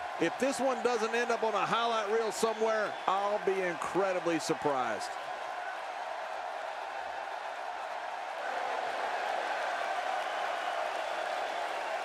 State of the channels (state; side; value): identical; both; correlation 1.00